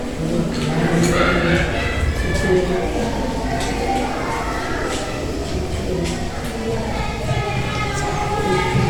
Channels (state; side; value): identical; both; correlation 1.00